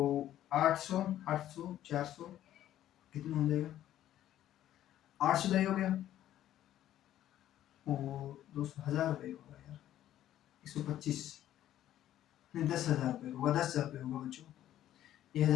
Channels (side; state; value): right; quieter; 12.4 dB